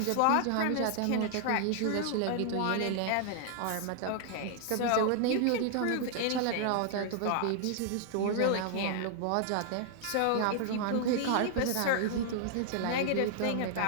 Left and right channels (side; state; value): both; different; correlation 0.00